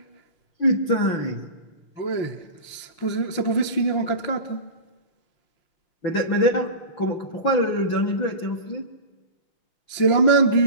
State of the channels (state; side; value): late; right; 5.8 ms